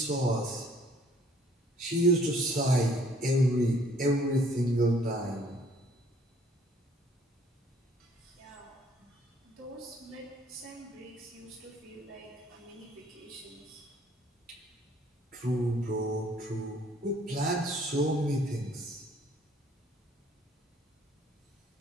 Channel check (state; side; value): normal; both; correlation 0.59